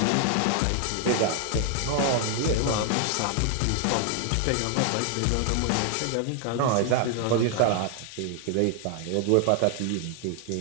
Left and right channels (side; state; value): both; different; correlation 0.00